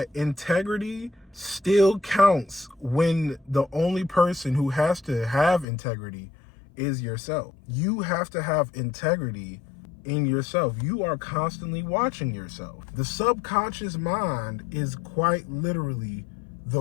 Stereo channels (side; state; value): right; drops out; at 5.7 s